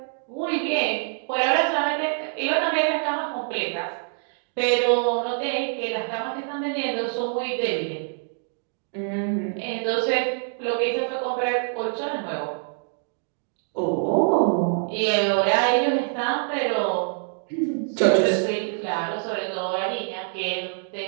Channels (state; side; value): silent; left; 62 dB below the other